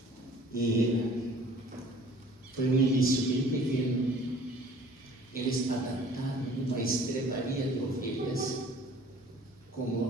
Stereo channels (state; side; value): normal; both; correlation 0.51